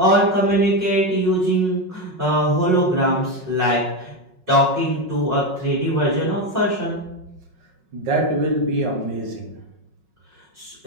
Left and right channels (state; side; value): late; left; 5.4 ms